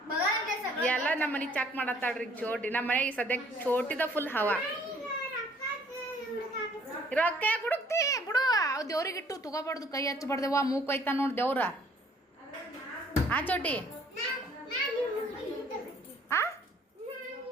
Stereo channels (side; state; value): both; normal; correlation 0.59